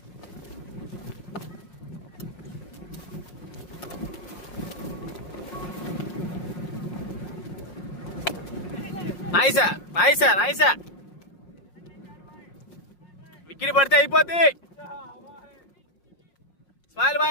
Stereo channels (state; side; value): late; right; 5.6 ms